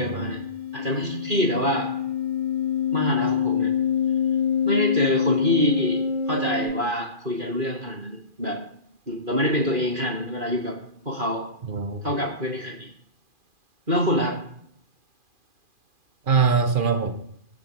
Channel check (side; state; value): left; late; 2.4 ms